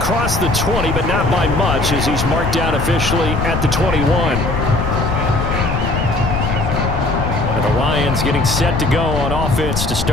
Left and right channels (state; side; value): noise; left; rumble, 3 dB below the sound